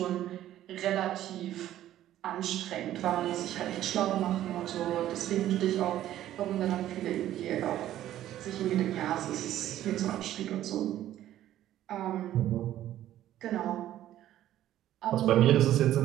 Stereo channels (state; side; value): quieter; left; 12.8 dB